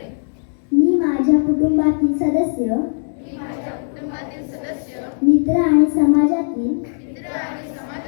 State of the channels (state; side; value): silent; right; digital silence